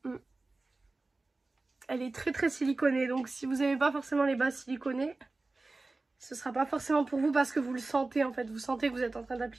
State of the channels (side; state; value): left; quieter; 3.3 dB